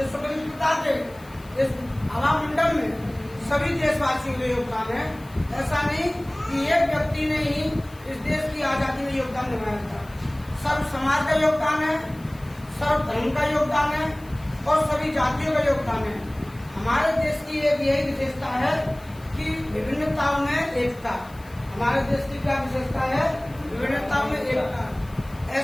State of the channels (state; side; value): noise; left; hiss, 25 dB below the sound